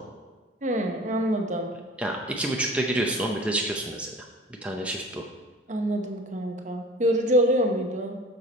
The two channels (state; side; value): normal; both; correlation 0.42